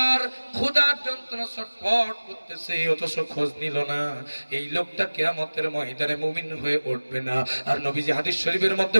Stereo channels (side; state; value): both; inverted; correlation -1.00